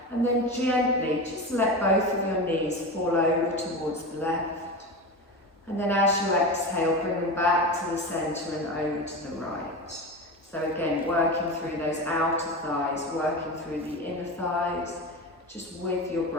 And then gently just let both of your knees fall over towards the left. And then as you exhale, bring them back to the centre and over to the right. So again, working through those outer thighs, working through the inner thighs, just with your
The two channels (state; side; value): normal; both; correlation 0.24